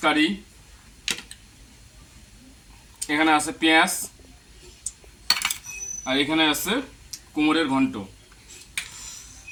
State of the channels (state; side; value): identical; both; correlation 1.00